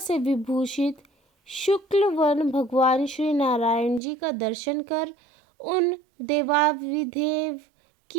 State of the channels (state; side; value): drops out; left; at 4.0 s